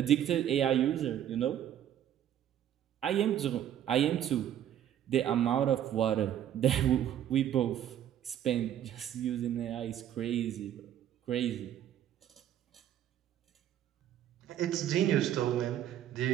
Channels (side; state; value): left; quieter; 10.8 dB